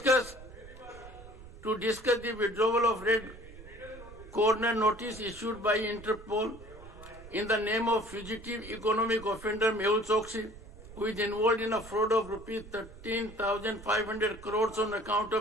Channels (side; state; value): right; noise; rumble, 17 dB below the sound